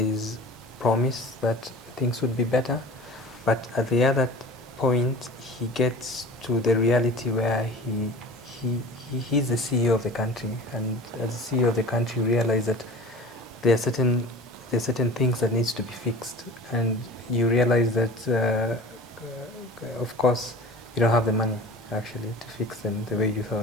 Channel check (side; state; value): both; normal; correlation 0.40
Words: promise that things would be better. But at the other point, he gets to the reality where he's the CEO of the country, and as the CEO of the country, realize that there are certain things that needs to be fixed, and you realize that of course you don't have the money actually to fix them the way you